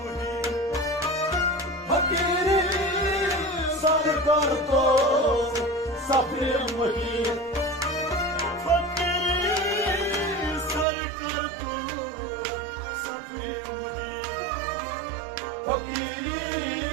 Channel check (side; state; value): left; drops out; at 10.9 s